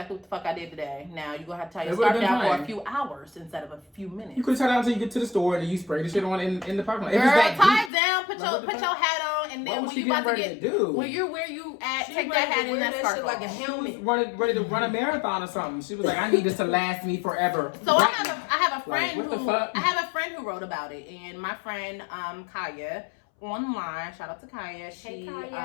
what the fuck I did today. Now you're gonna have to tie your It would've scarf been down for fine. a few hours instead of a few minutes. You could tie it down until you get to the store and you spray the shit on in the parking lot. If Girl, it's that tie deep. it down, put Like, what the your fuck? hat on, and What then was when she you about to getting get ready to do? when you're where you at, She take ready that to hat and wear that that scarf shit like a off. helmet. She was ready to run a marathon or something. She was like, I need this to last me forever. So Right I now. have a friend Like, what the who fuck? I have a friend who wrote about it, and my friend Kaya online. Shout out to Kaya. She Hey,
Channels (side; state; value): right; drops out; at 7.9 s